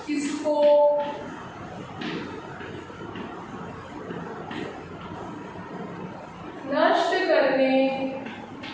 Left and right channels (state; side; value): identical; both; correlation 1.00